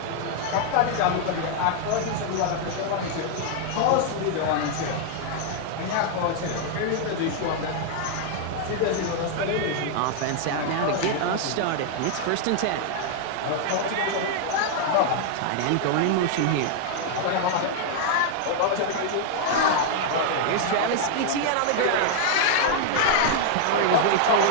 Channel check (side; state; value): both; different; correlation 0.00